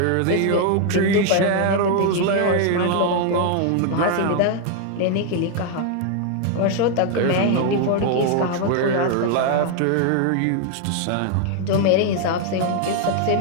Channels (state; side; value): different; both; correlation 0.00